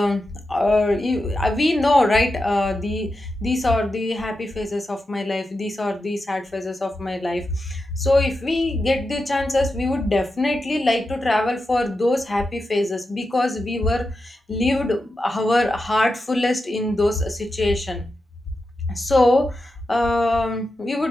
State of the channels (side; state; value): both; normal; correlation 0.89